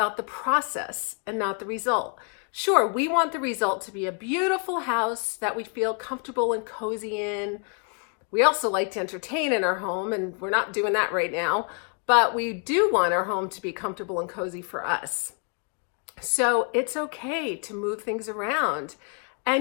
the process and not the result. Sure, we want the result to be a beautiful house that we feel comfortable and cozy in. We also like to entertain in our home, and we're not doing that right now, but we do want our home to be comfortable and cozy for us. So it's okay to move things around.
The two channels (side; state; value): right; quieter; 39.9 dB